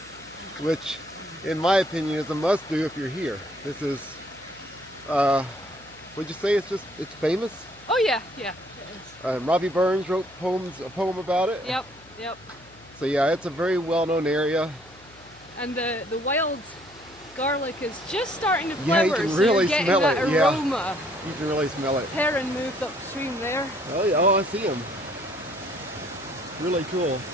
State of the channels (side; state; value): left; noise; hum, 26 dB below the sound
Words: which in my opinion is a must-do if you're here. This is, would you say it's famous? Oh yeah, yeah. It is. Robbie Burns wrote a poem about it. Yep, yep. So yeah, it's a very well-known area. And the wild garlic is just starting to Yeah, flower, you can so really you're getting smell that it. Yeah. aroma. You can really smell it. Heron moved upstream there. Oh yeah, I see him. Really cool.